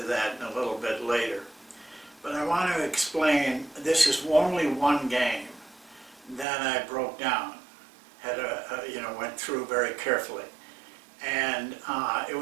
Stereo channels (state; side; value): drops out; left; at 6.5 s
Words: that in a little bit later. But I want to explain, this is only one game that I broke down, went through very carefully. And it